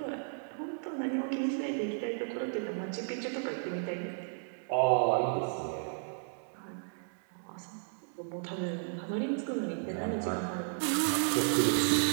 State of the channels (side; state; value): left; silent; digital silence